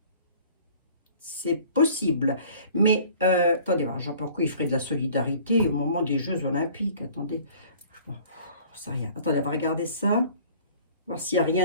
C'est possible. Mais, attendez, je ne sais pas pourquoi il ferait de la solidarité au moment des Jeux Olympiques. Attendez, je sais rien. Attendez, on va regarder ça. Voir s'il n'y a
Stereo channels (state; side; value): inverted; both; correlation -0.50